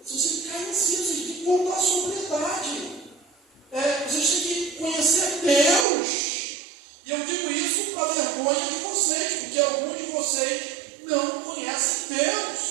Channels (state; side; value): drops out; left; at 5.9 s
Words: Vocês têm que cair em si, vocês têm que voltar à sobriedade. Vocês têm que conhecer Deus. E eu digo isso para a vergonha de vocês, porque alguns de vocês não conhecem